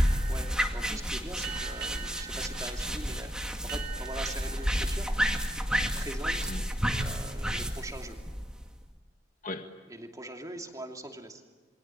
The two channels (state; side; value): normal; both; correlation 0.80